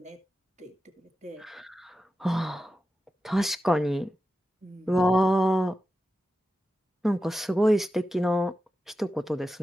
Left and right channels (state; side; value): normal; both; correlation 0.92